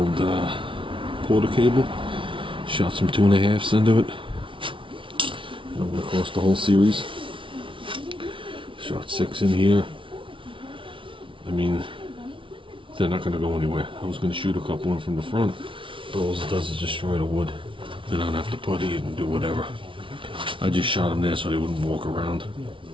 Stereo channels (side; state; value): left; late; 0.25 ms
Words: porter cable, shot some 2.5s into it. And I went across the whole series. Shot 6 in here. I mean, they're not going to go anywhere. I was going to shoot a couple in from the front, but all it does is destroy the wood. Then I don't have to putty it and do whatever. I just shot them there so they wouldn't walk around.